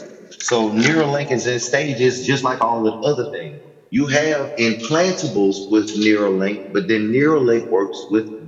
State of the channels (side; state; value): both; identical; correlation 1.00